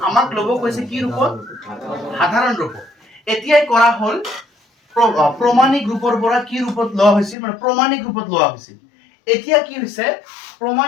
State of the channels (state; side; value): drops out; right; at 7.4 s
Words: আমাক লব কৈছে কি ৰূপত সাধাৰণ ৰূপত এতিয়াই কৰা হল প্ৰমাণিক ৰূপৰ পৰা কি ৰূপত লোৱা হৈছিল মানে প্ৰমাণিক ৰূপত লোৱা হৈছিল এতিয়া কি হৈছে